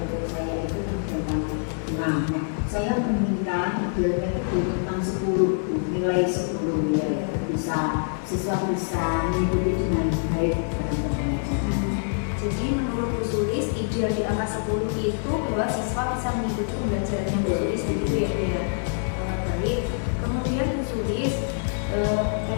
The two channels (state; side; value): silent; right; digital silence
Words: saya itu kan tentang 6. Nah, saya meminta idealnya itu di rentang 10, nilai 10 ya, bisa siswa bisa mengikuti dengan baik dalam pembelajaran. Jadi menurut Bu Sulis ideal di angka 10 itu bahwa siswa bisa mengikuti pembelajarannya Bu Sulis begitu ya Bu ya. Baik. Kemudian Bu Sulis